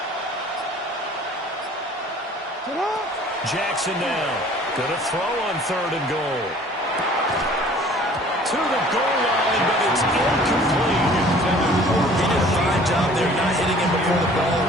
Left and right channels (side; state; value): both; normal; correlation 0.51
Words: Jackson now going to throw on third and goal. To the goal line, but it's incomplete. He did a fine job there not hitting him before the ball